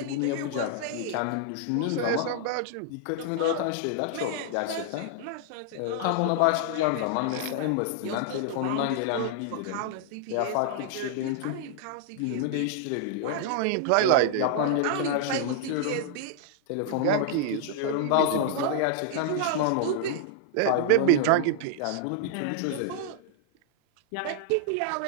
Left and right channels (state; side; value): different; both; correlation -0.01